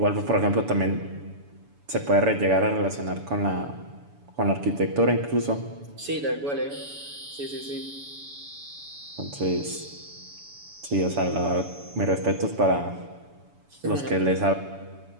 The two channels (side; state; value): left; late; 7.0 ms